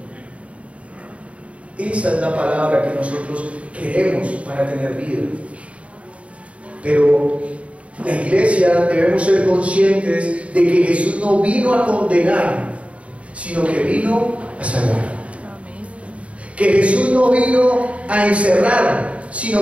Esa es la palabra que nosotros queremos para tener vida. Pero la iglesia debemos ser conscientes de que Jesús no vino a condenar, sino que vino a salvar. Que Jesús no vino a encerrar,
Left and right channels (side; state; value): left; late; 0.064 ms